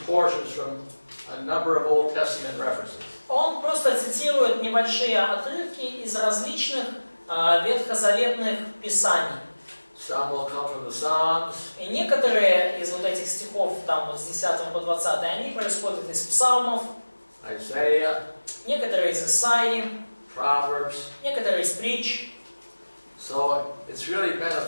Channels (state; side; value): inverted; both; correlation -1.00